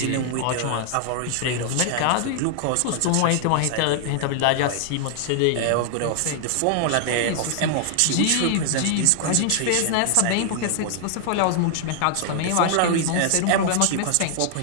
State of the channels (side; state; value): both; different; correlation 0.00